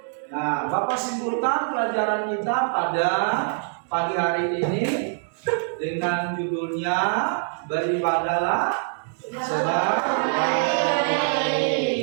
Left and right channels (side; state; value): left; silent; digital silence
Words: Nah, Bapak simpulkan pelajaran kita pada pagi hari ini dengan judulnya beribadahlah sebab